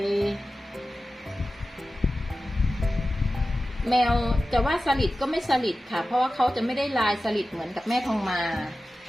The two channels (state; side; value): normal; both; correlation 0.94